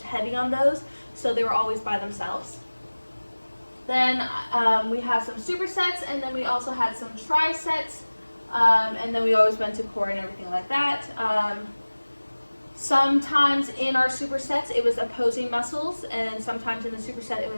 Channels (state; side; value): inverted; both; correlation -1.00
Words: heavy on those, so they were always by themselves. Then we have some supersets, and then we also had some trisets, and then we always went to core and everything like that. Sometimes in our supersets it was opposing muscles, and sometimes in the superset it